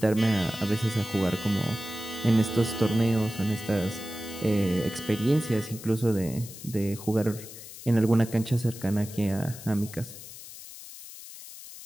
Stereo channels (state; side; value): noise; left; hiss, 14 dB below the sound